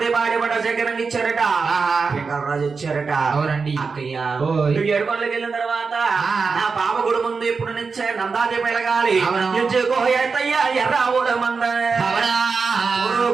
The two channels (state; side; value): quieter; left; 4.9 dB